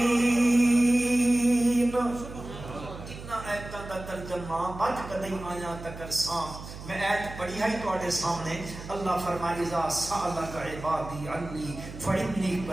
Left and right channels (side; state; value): right; noise; hum, 12 dB below the sound